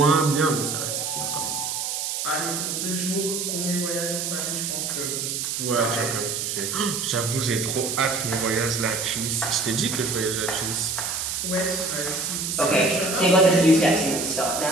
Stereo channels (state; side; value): noise; right; hiss, 2 dB below the sound